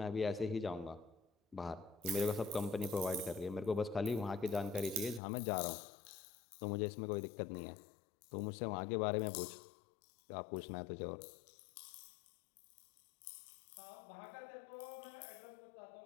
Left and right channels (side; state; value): right; drops out; at 5.2 s